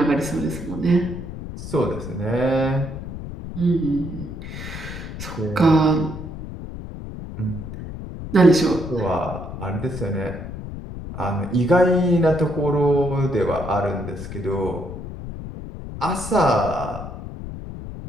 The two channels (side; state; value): left; noise; rumble, 9 dB below the sound